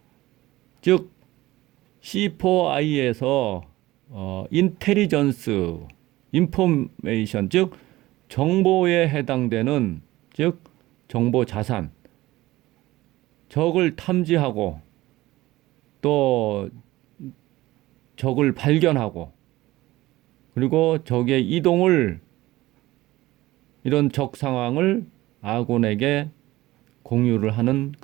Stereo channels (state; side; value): quieter; left; 17.8 dB